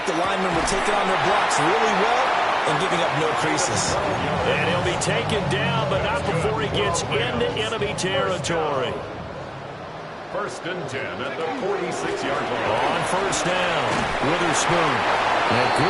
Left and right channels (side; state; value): both; identical; correlation 1.00